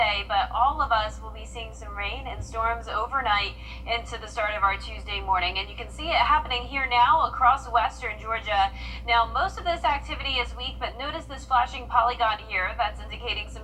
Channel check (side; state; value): both; identical; correlation 1.00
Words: but all of us will be seeing some rain and storms overnight into the start of our Tuesday morning. And you can see it happening here now across western Georgia. Now, most of this activity is weak, but notice this flashing polygon here. That's indicating some